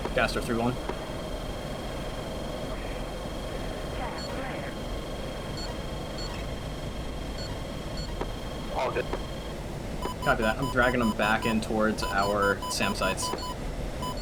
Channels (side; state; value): both; identical; correlation 1.00